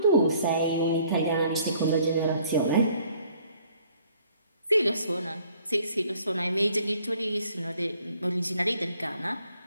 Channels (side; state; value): both; inverted; correlation -0.61